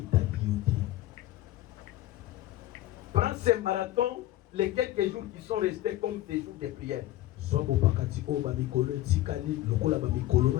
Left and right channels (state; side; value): quieter; right; 15.1 dB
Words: Prends ces marathons, les quelques jours qui sont restés comme des jours de prière.